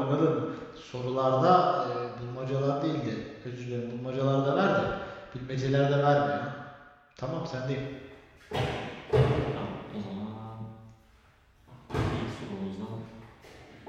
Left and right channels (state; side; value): identical; both; correlation 1.00